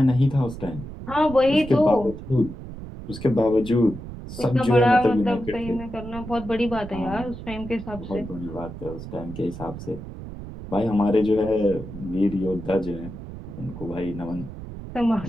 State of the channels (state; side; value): noise; right; rumble, 11 dB below the sound